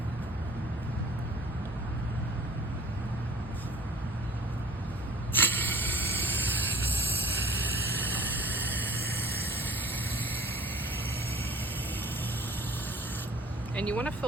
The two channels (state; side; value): normal; both; correlation 0.47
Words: And you want to